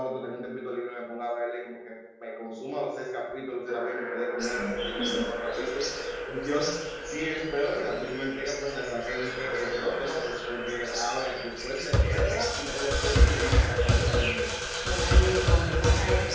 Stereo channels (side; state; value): both; identical; correlation 1.00